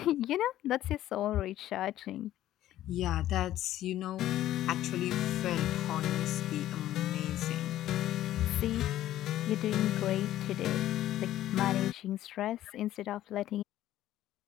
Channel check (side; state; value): right; quieter; 13.4 dB